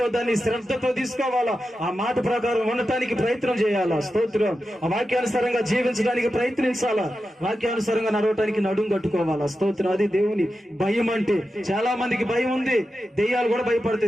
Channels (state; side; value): normal; both; correlation 0.91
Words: దాన్ని శ్రద్ధతో తీసుకోవాలా. ఆ మాట ప్రకారం ఉండటానికి ప్రయత్నం చేయాలా. స్తోత్రం. ఆ వాక్యానుసారంగా జీవించడానికి ప్రయత్నించాలా. వాక్యానుసారంగా నడవటానికి నడుం కట్టుకోవాలా. స్తోత్రం. అది దేవుని భయం అంటే. చాలా మందికి భయం ఉంది. దెయ్యాలు కూడా